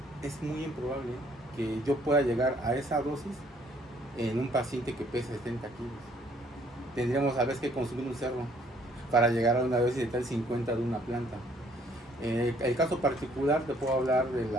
es muy improbable que yo pueda llegar a esa dosis en un paciente que pese 70 kilos. Tendríamos a veces que consumir un cerro para llegar a una dosis letal 50 de una planta. El caso particular te puedo hablar de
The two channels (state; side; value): normal; both; correlation 0.62